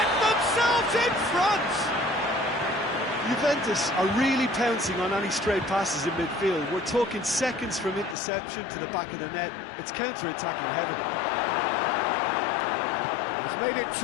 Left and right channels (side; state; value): right; drops out; at 8.2 s